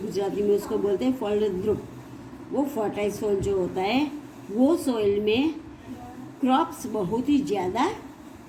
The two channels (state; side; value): identical; both; correlation 1.00